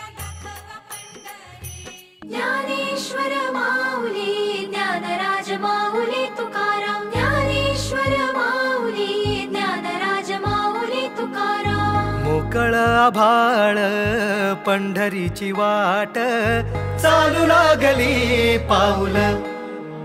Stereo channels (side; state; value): both; identical; correlation 1.00